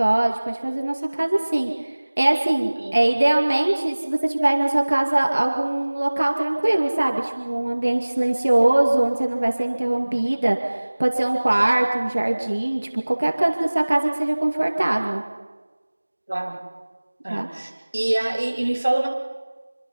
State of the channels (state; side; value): inverted; both; correlation -1.00